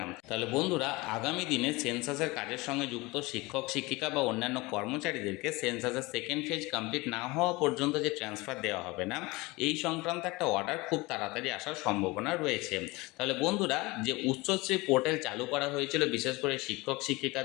তাহলে বন্ধুরা, আগামী দিনে সেন্সাসের কাজের সঙ্গে যুক্ত শিক্ষক শিক্ষিকা বা অন্যান্য কর্মচারীদেরকে সেন্সাসের সেকেন্ড ফেজ কমপ্লিট না হওয়া পর্যন্ত যে ট্রান্সফার দেওয়া হবে না, এই সংক্রান্ত একটা অর্ডার খুব তাড়াতাড়ি আসার সম্ভাবনা রয়েছে। তাহলে বন্ধুরা, যে উচ্চশ্রী পোর্টাল চালু করা হয়েছিল বিশেষ করে শিক্ষক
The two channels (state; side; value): quieter; right; 22.9 dB